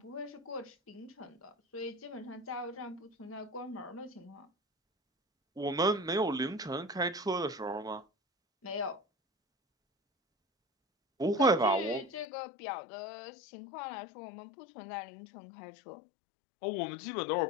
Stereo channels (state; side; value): drops out; right; at 12.2 s